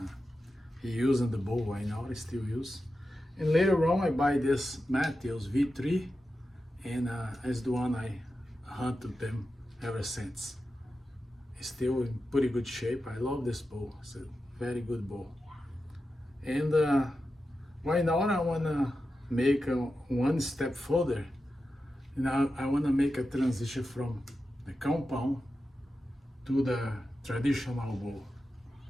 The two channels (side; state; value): both; normal; correlation 0.91